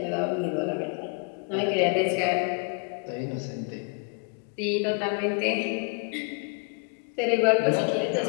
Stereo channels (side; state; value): right; quieter; 37.0 dB